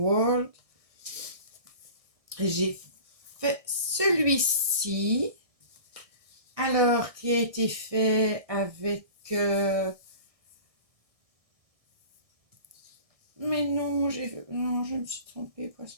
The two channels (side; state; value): left; late; 1.6 ms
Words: j'ai fait celui-ci, alors qui a été fait avec... mais non, je me suis trompée,